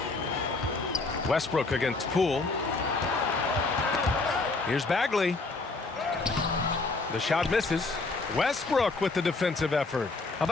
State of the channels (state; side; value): quieter; right; 3.6 dB